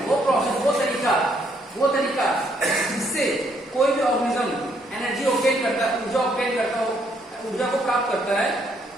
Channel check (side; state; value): both; normal; correlation 0.71